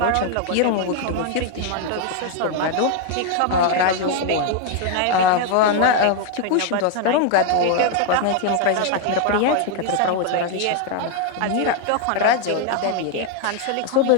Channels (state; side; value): different; both; correlation 0.01